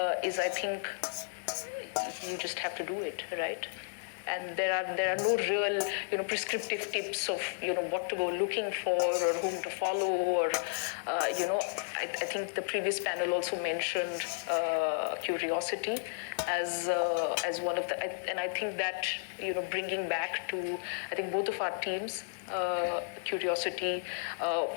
is, I think, you just have to do it, right? And there are no real prescriptive tips of what to go looking for or whom to follow, or I think the previous panel also mentioned curiosity as one of the, and I think that bringing back to I think both of our teams curiosity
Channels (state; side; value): silent; right; digital silence